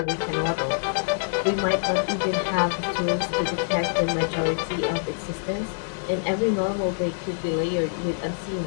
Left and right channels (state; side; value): silent; right; digital silence